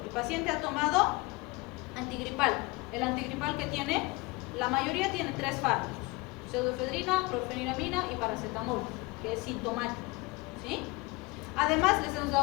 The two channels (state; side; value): quieter; right; 24.5 dB